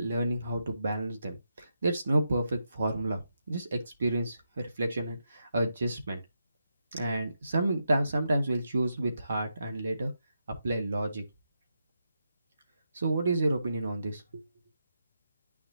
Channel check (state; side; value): inverted; both; correlation -0.84